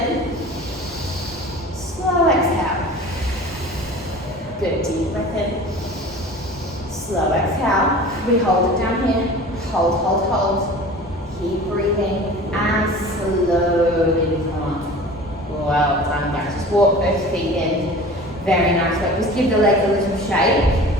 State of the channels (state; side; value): normal; both; correlation 0.40